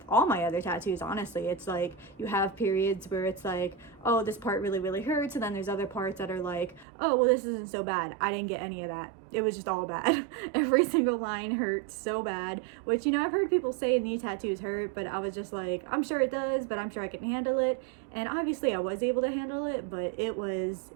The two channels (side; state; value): left; drops out; at 6.9 s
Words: all my other tattoos, honestly, it's like you have periods where it's like, oh, this part really hurts, and then there's other parts that are like, oh, well, this isn't so bad. I didn't get any of that. It was just all bad. Every single line hurt so bad, which, I've heard people say knee tattoos hurt, but I was just like, I'm sure it does, but I'm sure I can handle it. And obviously I was able to handle it, but it was